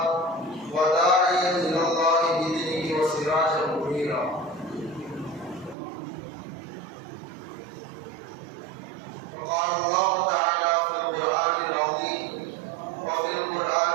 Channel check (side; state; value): left; drops out; at 5.8 s